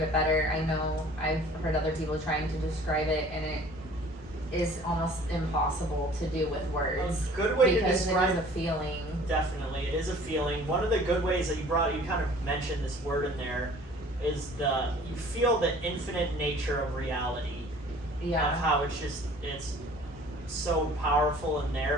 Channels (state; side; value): normal; both; correlation 0.50